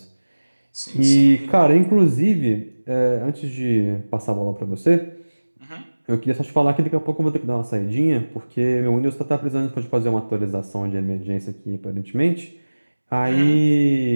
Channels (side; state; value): both; inverted; correlation -1.00